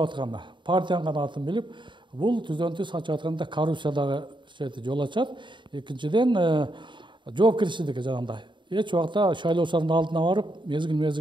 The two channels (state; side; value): late; left; 0.23 ms